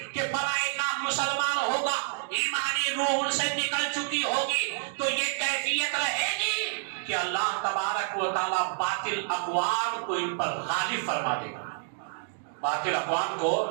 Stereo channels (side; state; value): left; silent; digital silence